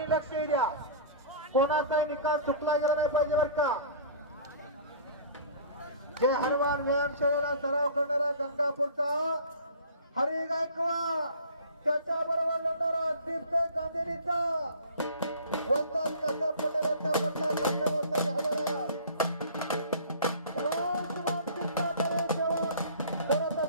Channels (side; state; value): both; inverted; correlation -0.43